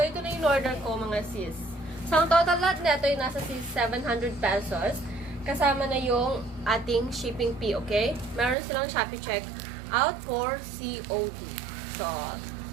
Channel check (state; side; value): drops out; left; at 8.6 s